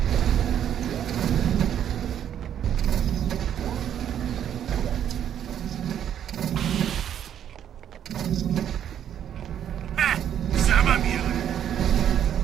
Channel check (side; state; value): left; quieter; 9.8 dB